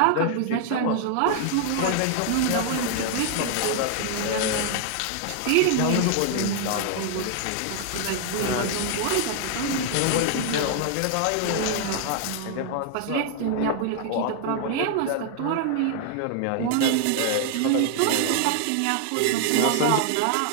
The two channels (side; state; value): both; different; correlation 0.00